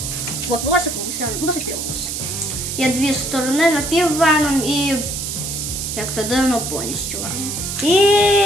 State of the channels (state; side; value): noise; right; hiss, 4 dB below the sound